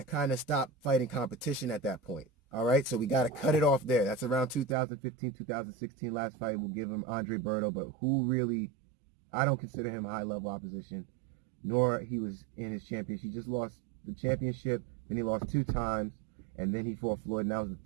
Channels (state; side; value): drops out; left; at 4.8 s